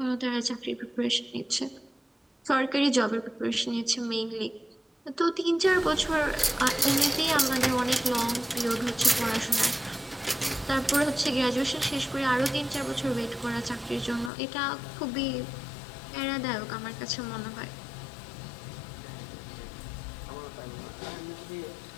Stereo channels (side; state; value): right; drops out; at 14.3 s